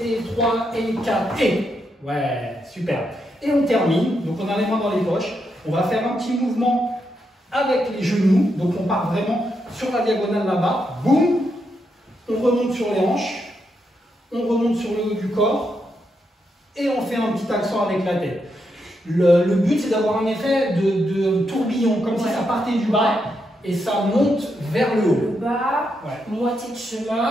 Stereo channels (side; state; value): both; normal; correlation 0.82